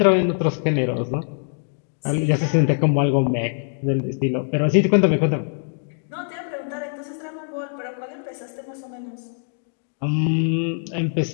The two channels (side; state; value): right; silent; 59 dB below the other